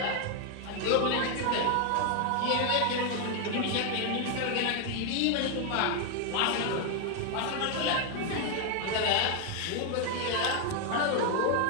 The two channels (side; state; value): both; different; correlation 0.00